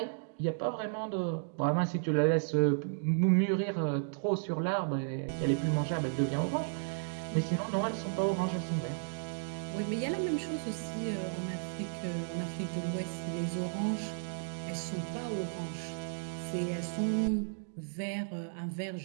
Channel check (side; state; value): left; silent; digital silence